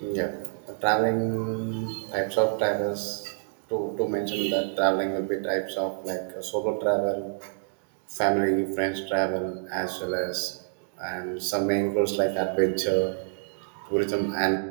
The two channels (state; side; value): silent; left; digital silence